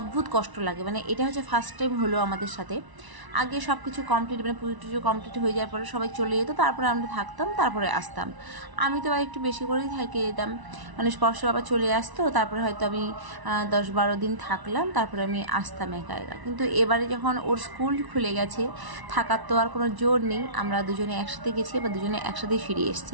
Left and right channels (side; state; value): left; late; 1.0 ms